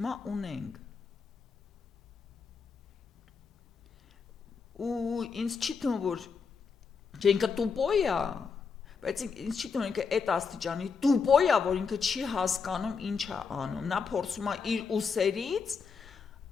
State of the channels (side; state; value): right; quieter; 5.5 dB